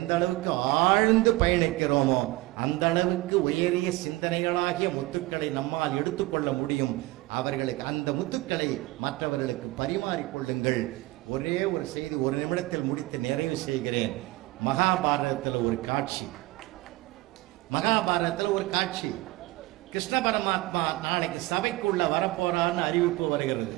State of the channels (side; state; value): left; quieter; 19.8 dB